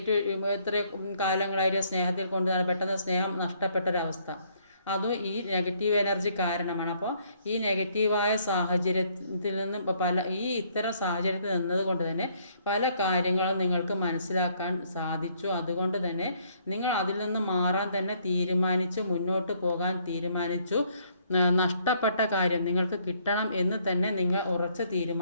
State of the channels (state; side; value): inverted; both; correlation -0.67